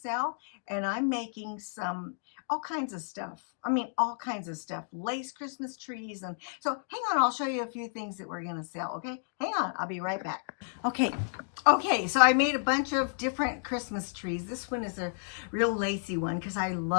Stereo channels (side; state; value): right; silent; digital silence